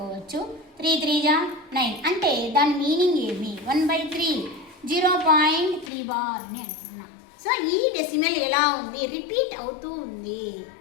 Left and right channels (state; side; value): drops out; right; at 5.9 s